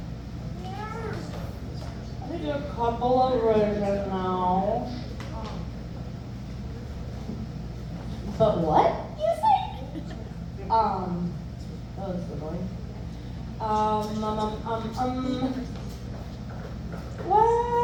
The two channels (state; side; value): identical; both; correlation 1.00